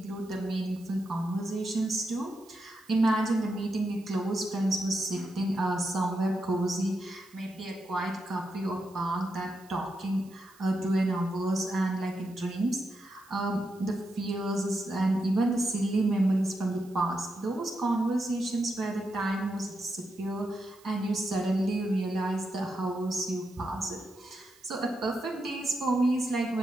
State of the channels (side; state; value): right; noise; hiss, 26 dB below the sound